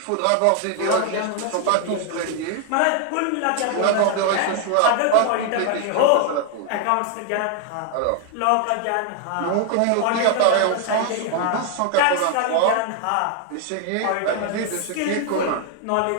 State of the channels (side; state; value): both; different; correlation 0.00